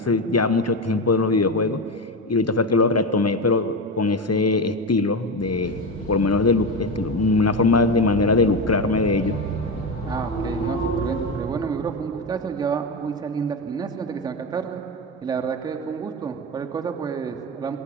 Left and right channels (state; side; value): normal; both; correlation 0.17